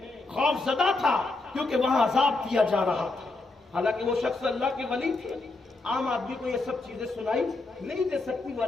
خوف زدہ تھا کیونکہ وہاں عذاب دیا جا رہا تھا، حالانکہ وہ شخص اللہ کے ولی تھے، عام آدمی کو یہ سب چیزیں سنائی نہیں دے سکتی، وہ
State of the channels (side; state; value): right; quieter; 3.3 dB